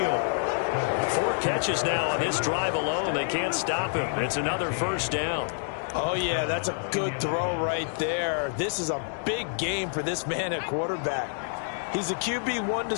4 catches now on this drive alone. They can't stop him. It's another first down. Oh, yeah, that's a good throw right there. This is a big game for this man at quarterback. He's a QB1 to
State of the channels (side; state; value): right; silent; digital silence